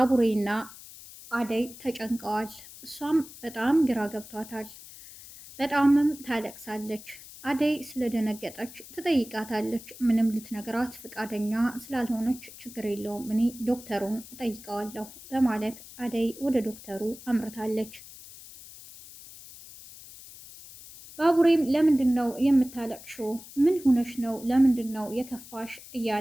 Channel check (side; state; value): left; noise; hiss, 17 dB below the sound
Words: አደይ ተጨንቀዋል። እሷም በጣም ግራ ገብቷታል። በጣምም ታለቅሳለች። አደይ ስለደነገጠች ትጠይቃታለች። ምንም ልትነግራት ፈቃደኛ ስላልሆነች ችግር የለውም እኔ ዶክተሩን እጠይቀዋለሁ በማለት አደይ ወደ ዶክተሩ አምርታለች። ባቡሬም ለምንድን ነው የምታለቅሽው? ምን ሆነሽ ነው? ለምንድን ነው የከፋሽ?